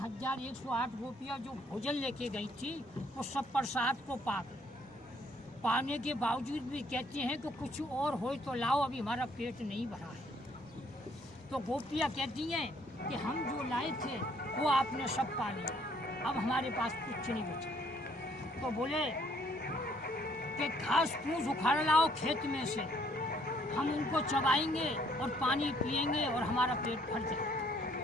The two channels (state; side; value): normal; both; correlation 0.65